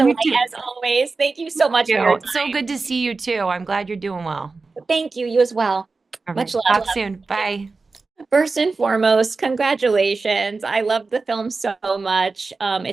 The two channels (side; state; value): left; quieter; 4.0 dB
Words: me delight too. as always. Thank you so much for your So time. good to see you too. I'm glad you're doing well. Thank you. You as well. All Much right. love. Talk soon. Bye. First and foremost, congratulations. I love the film so much.